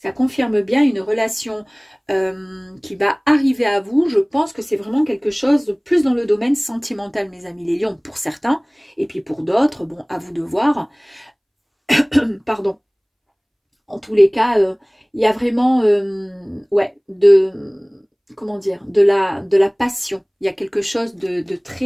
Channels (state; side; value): identical; both; correlation 1.00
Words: Ça confirme bien une relation qui va arriver à vous. Je pense que c'est vraiment quelque chose de plus dans le domaine sentimental, mes amis les lions, pour certains. Et puis pour d'autres, bon, à vous de voir. Pardon. En tous les cas, il y a vraiment, ouais, comment dire, de la passion. Il y a quelque chose de